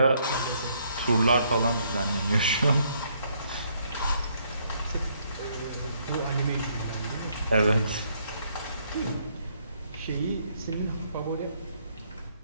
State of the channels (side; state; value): both; inverted; correlation -0.70